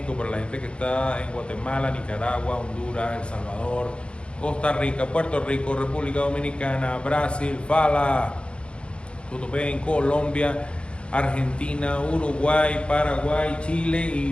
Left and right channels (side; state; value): right; late; 0.057 ms